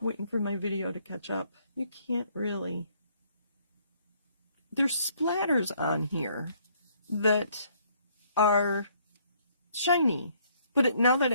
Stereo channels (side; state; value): both; inverted; correlation -0.65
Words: Waiting for my video to catch up. You can't really. There's splatters on here that are shiny. But now that